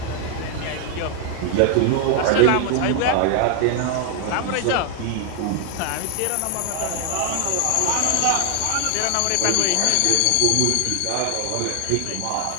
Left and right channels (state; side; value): different; both; correlation 0.01